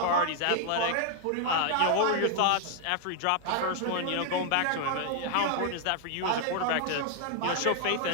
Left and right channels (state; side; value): different; both; correlation 0.00